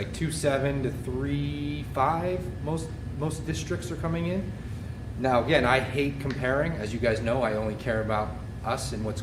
2.7 to 3.5. Most districts are coming in. Now again, I hate comparing. As you guys know, I only care about us and what's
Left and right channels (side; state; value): both; identical; correlation 1.00